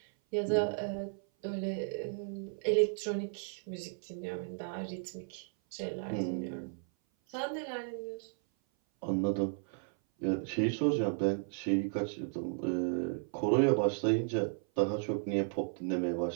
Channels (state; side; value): silent; left; 55 dB below the other